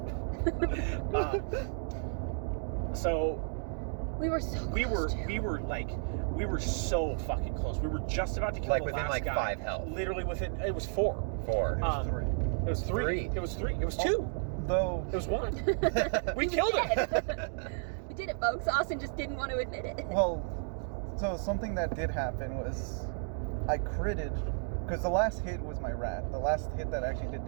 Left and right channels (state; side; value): silent; left; 56 dB below the other